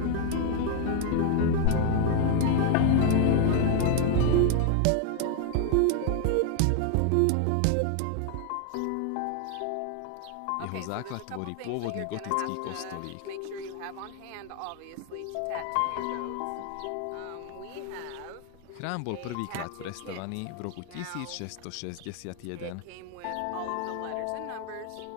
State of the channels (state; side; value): different; both; correlation 0.00